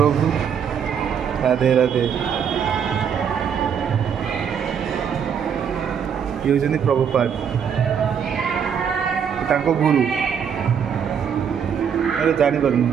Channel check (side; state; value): left; quieter; 7.6 dB